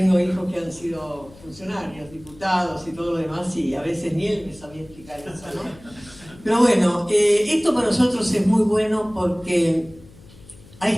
hijos que han sido funcionarios, diputados y todo lo demás, y a veces ni él me sabía explicar eso, ¿no? Pero bueno, esto para nosotros es muy bueno porque a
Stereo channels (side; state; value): left; noise; hum, 23 dB below the sound